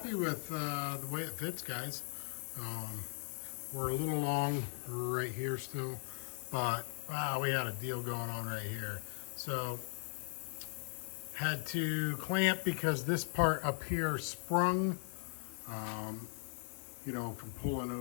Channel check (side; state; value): right; silent; 52 dB below the other